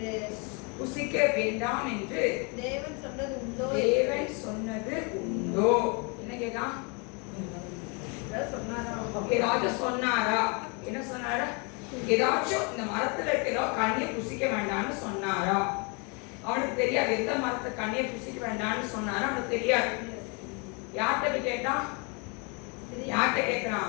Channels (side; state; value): right; quieter; 33.2 dB